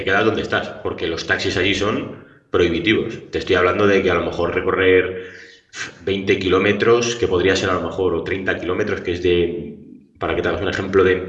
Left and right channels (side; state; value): both; identical; correlation 1.00